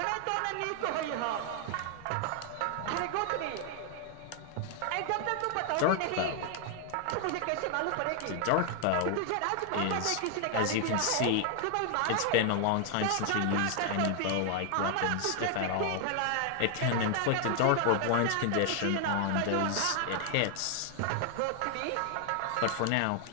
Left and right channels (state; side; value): different; both; correlation 0.00